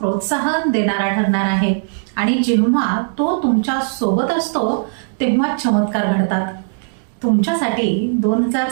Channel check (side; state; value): left; silent; digital silence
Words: देणारा ठरणार आहे आणि जेव्हा तो तुमच्या सोबत असतो तेव्हा चमत्कार घडतात. तुमच्यासाठी